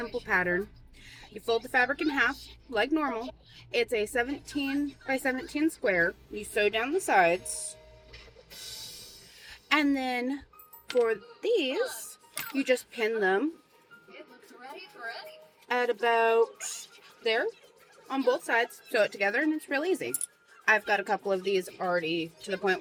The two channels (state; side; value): identical; both; correlation 1.00